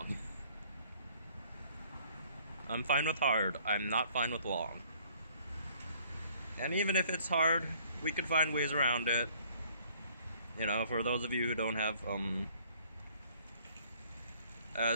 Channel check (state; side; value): inverted; both; correlation -0.58